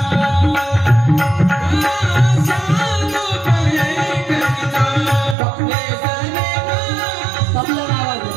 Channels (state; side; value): drops out; left; at 5.4 s